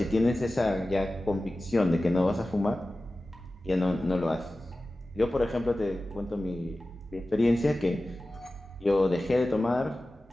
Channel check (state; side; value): normal; both; correlation 0.95